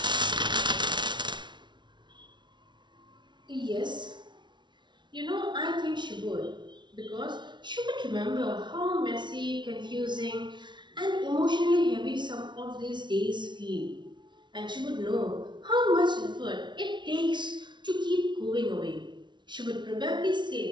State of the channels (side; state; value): left; late; 0.22 ms